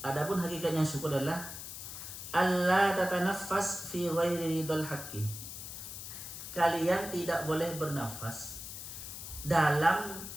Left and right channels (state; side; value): noise; left; hiss, 9 dB below the sound